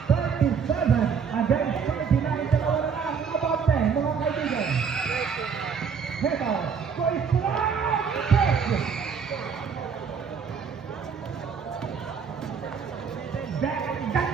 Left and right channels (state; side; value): quieter; left; 6.4 dB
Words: 37 against 39. Dalawa na lang. Abante, mga kaibigan. Ito. Koy Strong.